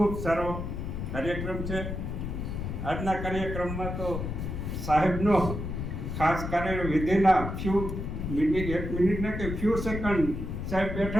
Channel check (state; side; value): noise; left; rumble, 5 dB below the sound